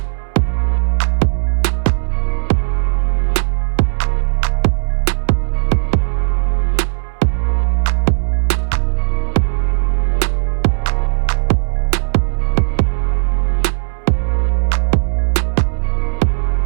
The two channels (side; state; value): left; silent; 67 dB below the other